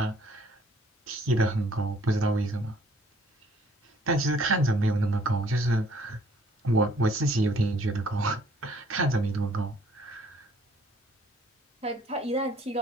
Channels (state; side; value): normal; both; correlation 0.61